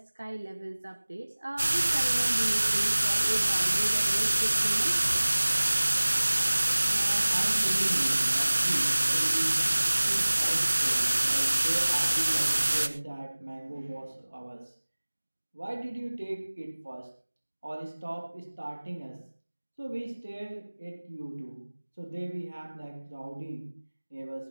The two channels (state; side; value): inverted; both; correlation -1.00